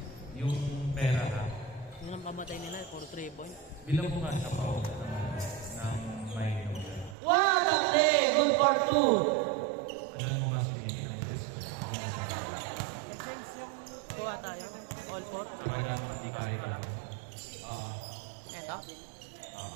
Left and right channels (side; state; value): left; drops out; at 7.2 s